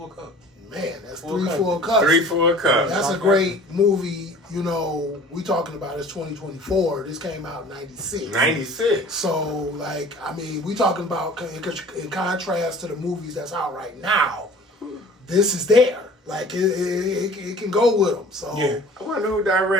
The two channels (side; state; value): both; normal; correlation 0.46